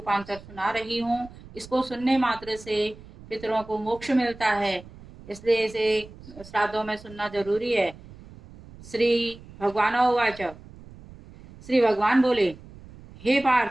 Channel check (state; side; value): noise; right; rumble, 19 dB below the sound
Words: सुना रही हूँ। इसको सुनने मात्र से पितरों को मोक्ष मिलता है, इसलिए इसे श्राद्धों में सुनना जरूरी है। श्री भगवान उवाच। श्री भगवान बोले, हे